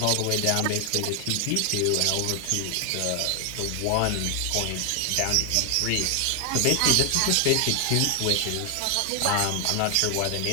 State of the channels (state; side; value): different; both; correlation 0.00